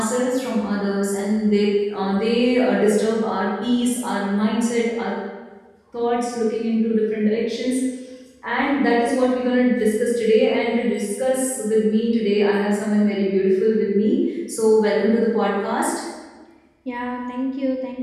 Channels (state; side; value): identical; both; correlation 1.00